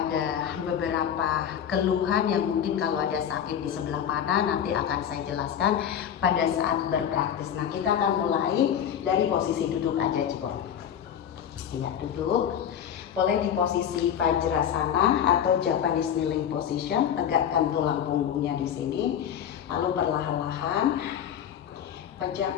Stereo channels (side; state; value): right; quieter; 9.1 dB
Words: beberapa keluhan yang mungkin kalau ada sakit di sebelah mana nanti akan saya jelaskan pada saat berpraktis. Nah, kita akan mulai dari posisi duduk aja, Cibon. Iya, duduk. Boleh di posisi Vajrasana atau Japanese kneeling position, tegakkan tulang punggungnya di sini. Lalu perlahan-lahan